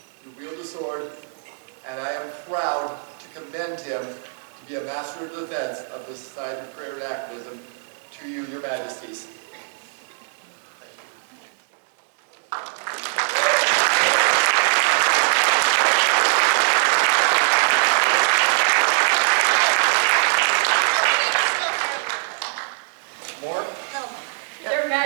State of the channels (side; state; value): left; silent; digital silence